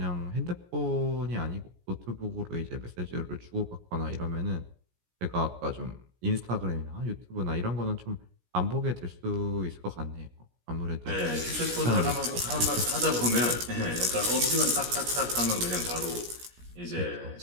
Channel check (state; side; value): late; left; 17 ms